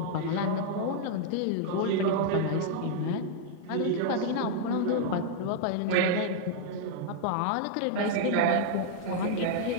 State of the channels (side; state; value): both; different; correlation -0.01